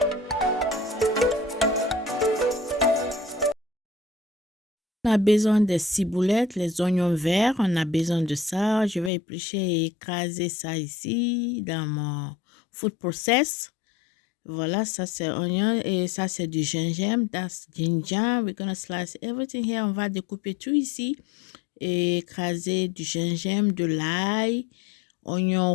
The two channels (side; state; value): right; drops out; at 9.1 s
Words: On a besoin des ciboulettes, les oignons verts, on a besoin de ça. Je vais éplucher et écraser ça ici dans mon food process. Voilà, ça c'est oignon et ça c'est du gingembre. That's ginger. We're gonna slice everything here. On va découper tout ici et écraser du gingembre, de l'ail, oignon